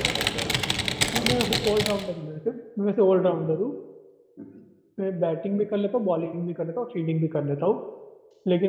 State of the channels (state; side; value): identical; both; correlation 1.00